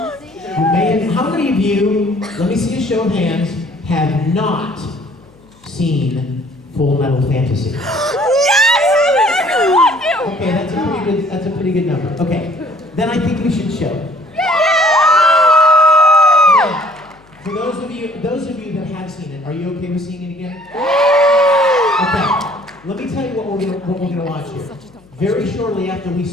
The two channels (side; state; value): left; noise; hum, 29 dB below the sound